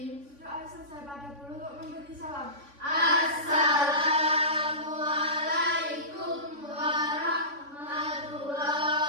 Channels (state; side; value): late; left; 3.5 ms